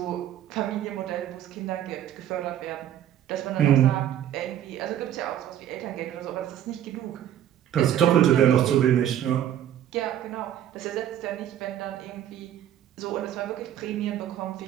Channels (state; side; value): quieter; left; 11.0 dB